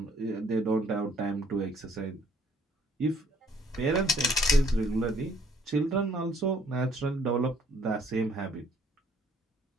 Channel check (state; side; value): normal; both; correlation 0.63